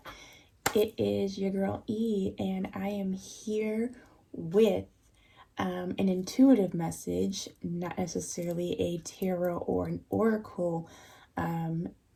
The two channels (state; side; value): identical; both; correlation 1.00